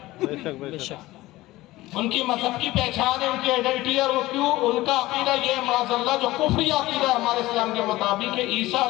ان کی مذہب کی پہچان ہے، ان کی آئیڈینٹی. اور وہ کیوں؟ ان کا عقیدہ یہ معاذ اللہ جو کفری عقیدہ ہے ہمارے اسلام کے مطابق کہ عیسیٰ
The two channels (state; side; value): quieter; right; 18.0 dB